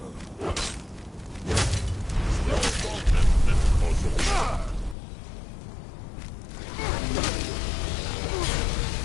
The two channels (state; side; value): drops out; right; at 5.0 s